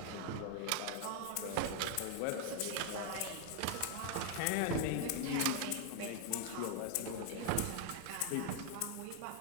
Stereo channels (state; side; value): different; both; correlation 0.00